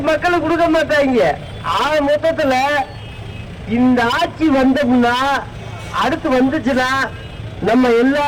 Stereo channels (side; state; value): both; identical; correlation 1.00